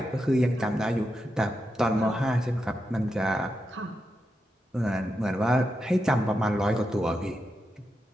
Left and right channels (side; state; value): both; normal; correlation 0.87